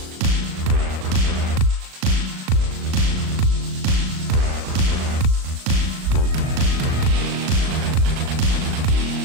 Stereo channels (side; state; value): left; late; 38 ms